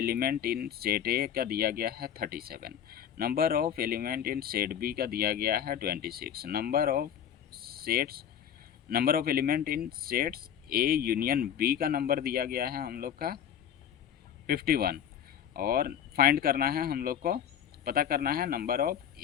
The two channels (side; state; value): right; quieter; 9.3 dB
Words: in set A का दिया गया है 37, number of element in set B का दिया गया है 26, number of element in sets A union B का नंबर दिया गया है हम लोग का 51, और फाइंड करना है हम लोग को, पता करना है number of